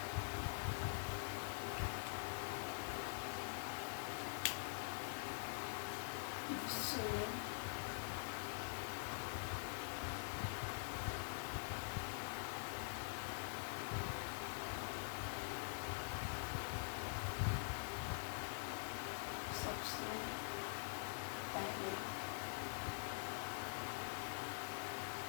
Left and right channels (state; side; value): silent; right; digital silence